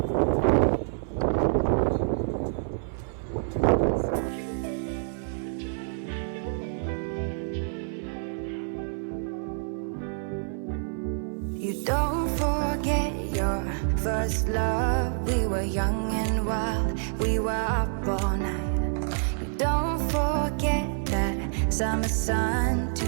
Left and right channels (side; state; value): left; silent; 57 dB below the other